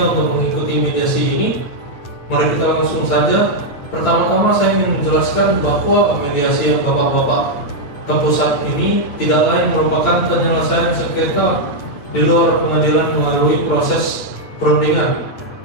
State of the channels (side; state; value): right; late; 9.0 ms